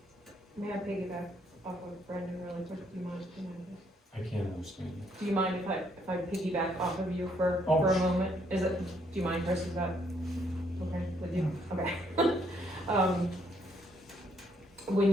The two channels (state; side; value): normal; both; correlation 0.70